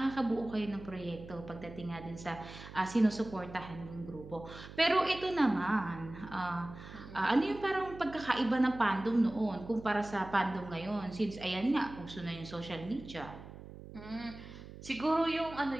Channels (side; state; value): right; noise; hum, 14 dB below the sound